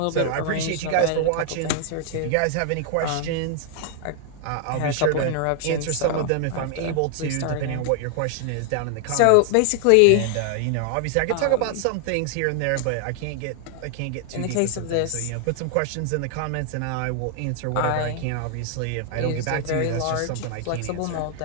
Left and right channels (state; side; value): different; both; correlation 0.00